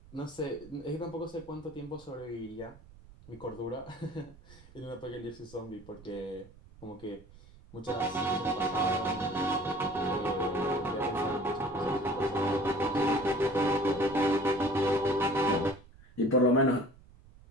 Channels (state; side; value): noise; right; rumble, 22 dB below the sound